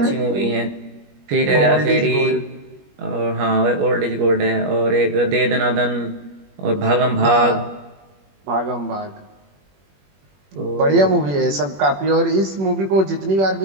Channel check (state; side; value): late; left; 21 ms